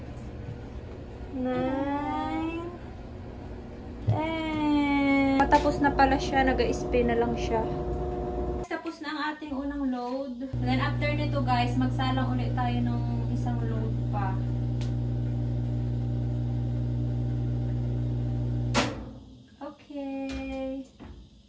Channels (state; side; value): identical; both; correlation 1.00